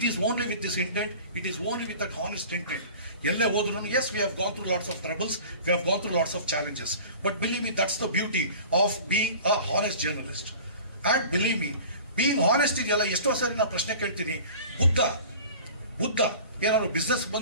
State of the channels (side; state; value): both; inverted; correlation -0.41